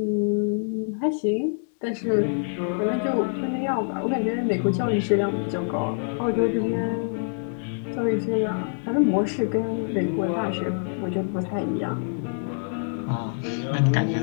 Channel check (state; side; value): silent; right; digital silence